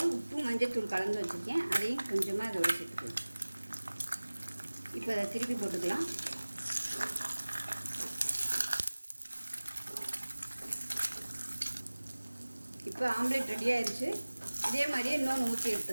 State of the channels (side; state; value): both; inverted; correlation -1.00